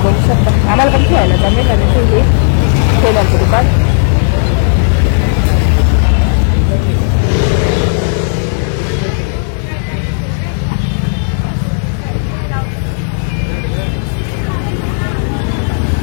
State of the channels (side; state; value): right; silent; digital silence